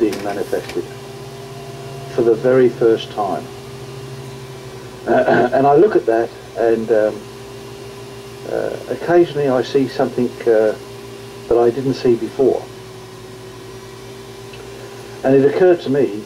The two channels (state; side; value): identical; both; correlation 1.00